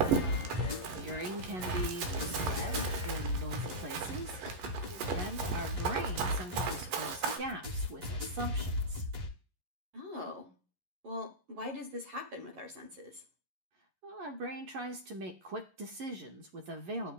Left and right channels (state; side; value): late; left; 11 ms